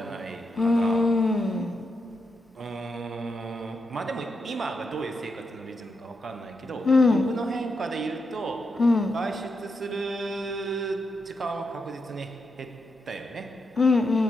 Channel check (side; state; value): both; normal; correlation 0.84